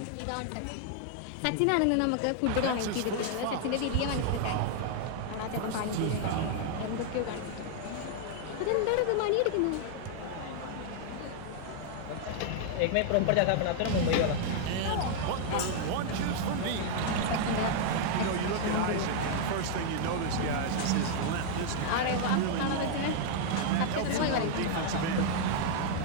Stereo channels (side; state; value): both; different; correlation 0.00